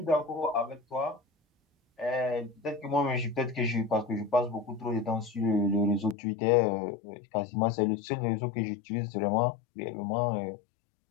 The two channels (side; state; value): right; drops out; at 6.2 s